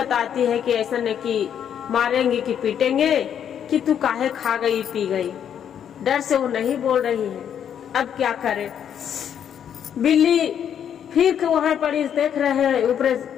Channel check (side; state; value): right; quieter; 8.9 dB